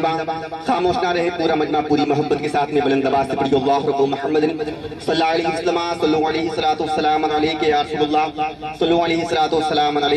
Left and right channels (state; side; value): identical; both; correlation 1.00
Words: خاموش نہ رہے, پورا مجمع پوری محبت کے ساتھ میں بلند آواز سے پڑھی اللہ رب محمد صلی اللہ علیہ وسلم صلو علیہ السلام علیکہ یا رسول اللہ صلو علیہ السلام